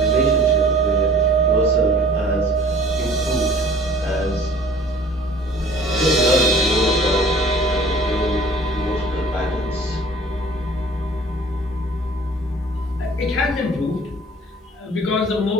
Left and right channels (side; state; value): both; normal; correlation 0.49